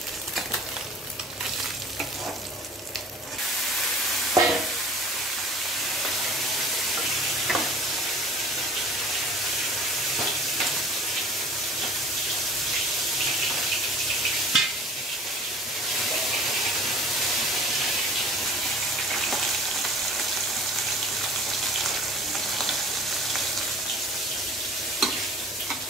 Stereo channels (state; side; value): normal; both; correlation 0.45